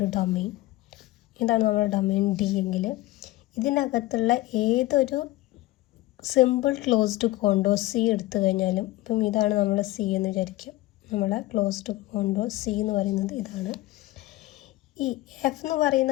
domain, ഇതാണ് നമ്മുടെ domain D എങ്കിൽ ഇതിനകത്തുള്ള ഏതൊരു സിമ്പിൾ ക്ലോസ്ഡ് കോണ്ടോർ സി എടുത്തു കഴിഞ്ഞാലും, ഇപ്പം ഇതാണ് നമ്മൾ സി എന്ന് വിചാരിക്കും. നമ്മളെ ക്ലോസ്ഡ് കോണ്ടോർ സി എന്ന് പറയുന്നത് ഇതാണ്. ഈ എഫ് എന്ന്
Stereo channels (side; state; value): right; quieter; 17.9 dB